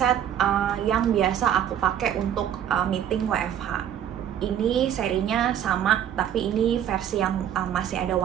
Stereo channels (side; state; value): left; quieter; 10.0 dB